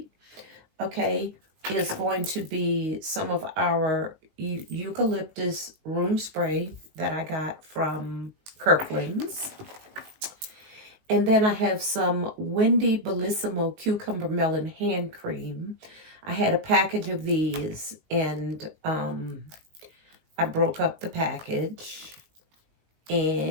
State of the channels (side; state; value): left; late; 19 ms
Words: okay, is going to be some of our eucalyptus room spray that I got from Kirkland's. And then I have some Wendy Bellissimo Cucumber Melon Hand Cream. I had a package of these, and I broke up the package.